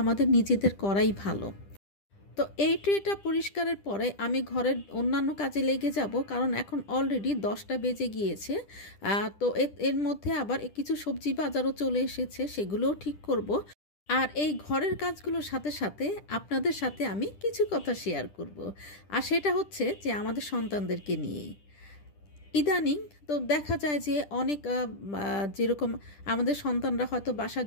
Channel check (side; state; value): right; late; 10 ms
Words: নিজেদের করাই ভালো। তো এই ট্রেটা পরিষ্কারের পরে আমি ঘরের অন্যান্য কাজে লেগে যাব, কারণ এখন অলরেডি 10টা বেজে গিয়েছে। তো এর মধ্যে আবার কিছু সবজি বাজারও চলে এসেছে, সেগুলোও ঠিক করব। আর এই ঘরের কাজগুলোর সাথে সাথে আপনাদের সাথে আমি কিছু কথা শেয়ার করব। আর সেটা হচ্ছে যে আমাদের সন্তানদেরকে নিয়েই। ইদানিং তো দেখা যায় যে অনেক যেরকম আমাদের সন্তানরা হয়তো বাসা,